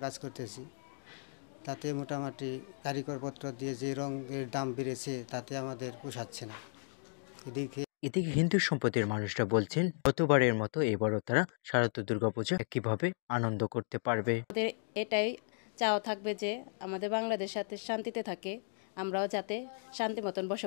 কাজ করতেছি। তাতে মোটামুটি কারিগরপত্র দিয়ে যে রঙের দাম বেড়েছে তাতে আমাদের পোষাচ্ছে না। এদিকে হিন্দু সম্প্রদায়ের মানুষরা বলছেন গতবারের মতো এবারও তারা শারদীয় দুর্গাপূজা একইভাবে আনন্দ করতে পারবে। আমাদের এটাই চাওয়া থাকবে যে আমাদের বাংলাদেশ সাথে শান্তিতে থাকে, আমরাও যাতে শান্তি মতন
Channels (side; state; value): right; silent; 54 dB below the other